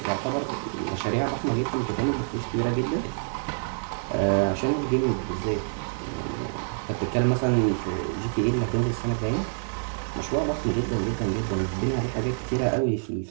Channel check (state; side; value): silent; left; digital silence